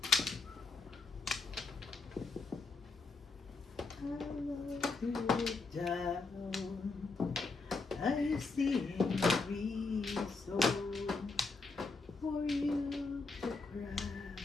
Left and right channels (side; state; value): right; quieter; 3.9 dB